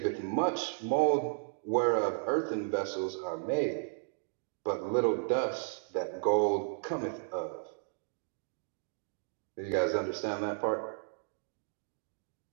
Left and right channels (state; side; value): silent; left; digital silence